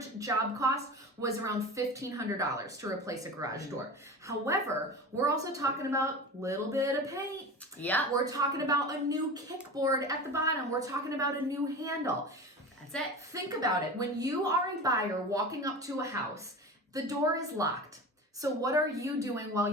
job cost was around $1,500 to replace a garage door. However, we're also talking about a little bit of paint. Yeah. We're talking about a new kickboard at the bottom. We're talking about a new handle. That's it. Think about it. When you are a buyer walking up to a house, the door is locked. So what are you doing while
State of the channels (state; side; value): normal; both; correlation 0.31